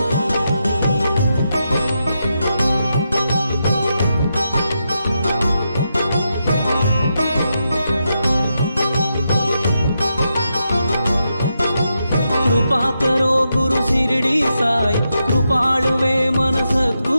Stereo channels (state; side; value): inverted; both; correlation -0.85